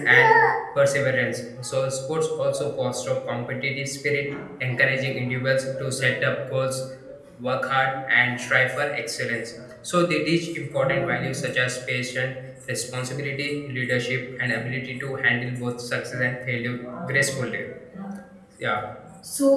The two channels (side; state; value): both; identical; correlation 1.00